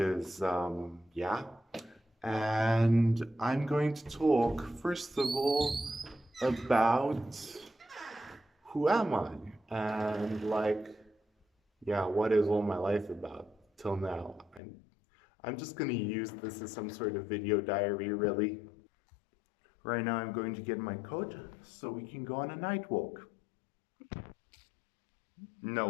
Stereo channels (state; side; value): drops out; right; at 14.6 s